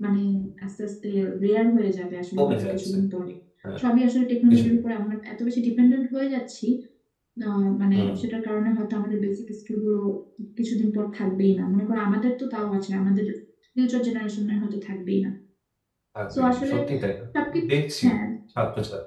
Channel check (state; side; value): identical; both; correlation 1.00